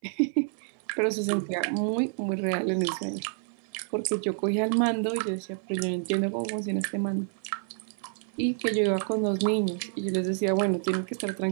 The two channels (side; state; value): left; silent; 56 dB below the other